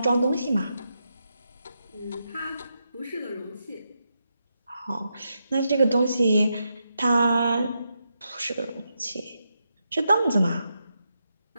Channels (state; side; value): inverted; both; correlation -0.84